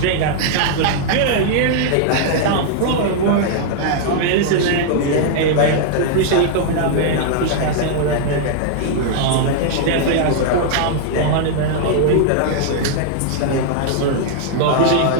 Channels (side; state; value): both; different; correlation -0.01